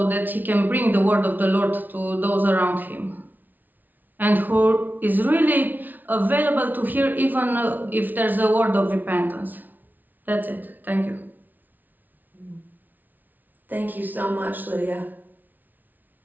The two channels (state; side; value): late; left; 0.083 ms